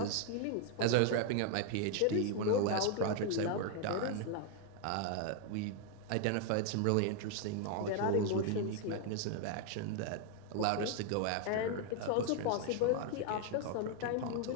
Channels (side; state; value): both; different; correlation 0.00